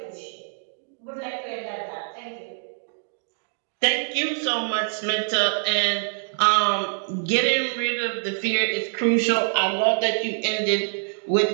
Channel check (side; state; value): left; silent; digital silence